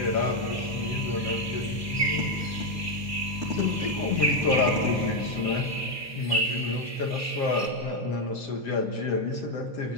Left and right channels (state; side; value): normal; both; correlation 0.05